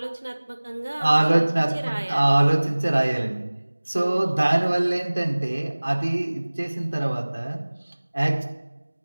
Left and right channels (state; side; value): inverted; both; correlation -1.00